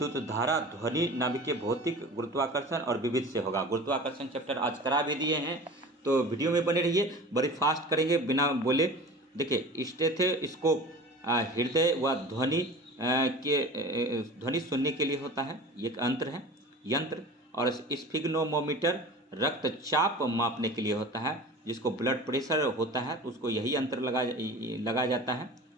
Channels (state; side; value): normal; both; correlation 0.37